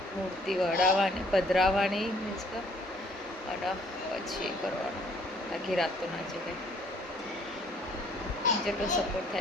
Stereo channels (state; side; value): normal; both; correlation 0.62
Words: મૂર્તિ વડાવવાની, પધરાવવાની મીન્સ કે, અને પછી કરવાનું. આખી રાત તો ના જગાય. જેટલો સપોર્ટ